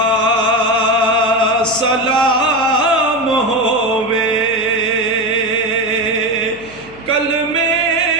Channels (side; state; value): left; noise; hum, 23 dB below the sound